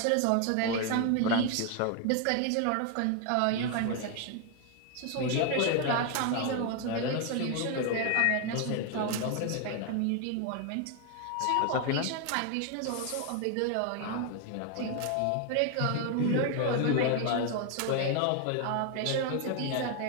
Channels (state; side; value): different; both; correlation 0.01